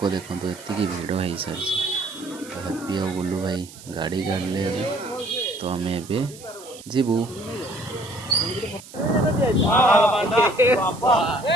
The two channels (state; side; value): noise; right; hiss, 18 dB below the sound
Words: ଦେଖନ୍ତୁ ଏତିକି ଭିଡ଼ ହେଇସାରିଛି। ତ ହାପି ଆଉ ବୁଲୁ ଭାଇ ଗାଡ଼ି କାଢ଼ିଲେ ଏବେ, ତ ଆମେ ଏବେ ଯିବୁ।